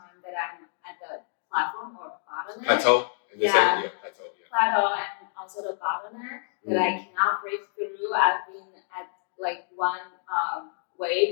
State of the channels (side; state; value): right; silent; digital silence